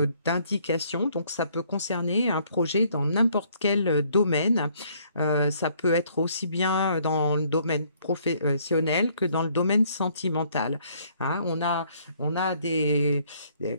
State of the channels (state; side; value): inverted; both; correlation -0.64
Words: donc ça peut concerner un projet dans n'importe quel domaine. Ça peut être aussi bien dans le domaine professionnel que dans le domaine sentimental, hein. On a